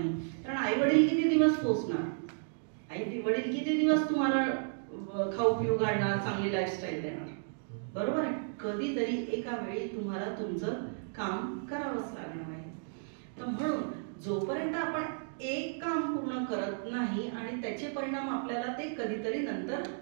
कारण आई वडील किती दिवस पोचणार, आई वडील किती दिवस तुम्हाला खाऊ पिऊ घालणार, चांगली लाईफस्टाईल देणार, बरोबर आहे? कधीतरी एका वेळी तुम्हाला तुमचं काम करावंच लागणार आहे. तर म्हणून जोपर्यंत आपण एक काम पूर्ण करत नाही आणि त्याचे परिणाम आपल्याला ते कधीतरी नंतर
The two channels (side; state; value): left; silent; digital silence